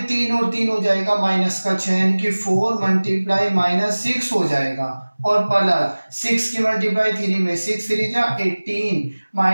3 और 3 हो जाएगा माइनस का 6, यानी कि 4 मल्टीप्लाई -6 हो जाएगा, और प्लस 6 की मल्टीप्लाई 3 में 6 3 जा 18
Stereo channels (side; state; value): both; inverted; correlation -1.00